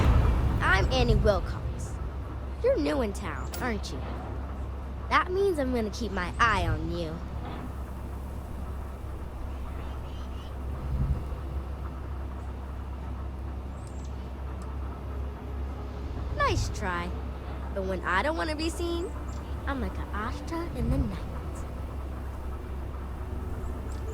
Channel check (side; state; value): both; identical; correlation 1.00